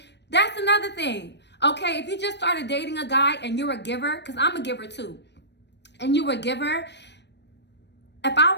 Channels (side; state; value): right; late; 0.50 ms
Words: That's another thing. Okay, if you just started dating a guy and you're a giver, because I'm a giver too, and you're a giver, if I